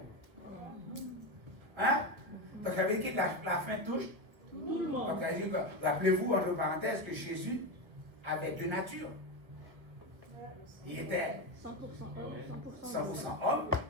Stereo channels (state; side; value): late; left; 1.1 ms